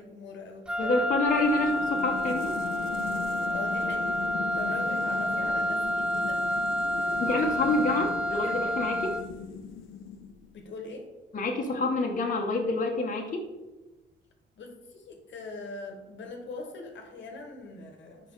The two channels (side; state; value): both; normal; correlation 0.61